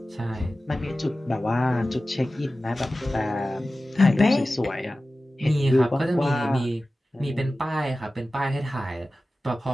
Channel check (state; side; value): normal; both; correlation 0.95